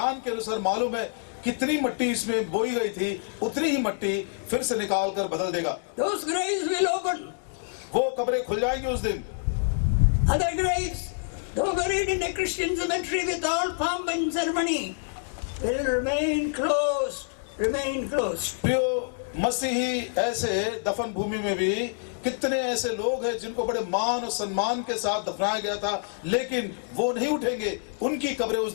के अनुसार मालूम है कितनी मिट्टी इसमें बोई गई थी, उतनी ही मिट्टी फिर से निकाल कर बदल देगा। Those graves will open. वो कब्रें खुल जाएंगी उस दिन। Other graves, though buried in a Christian cemetery with all pomp and ceremony, will remain closed, remain closed. प्रियो, मसीही ऐसे दफन भूमि में भी कितने ऐसे लोग हैं जिनको बड़े मान और सम्मान के साथ दफनाया गया था, लेकिन वो नहीं उठेंगे, उनकी कब्रें उस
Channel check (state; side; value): silent; right; digital silence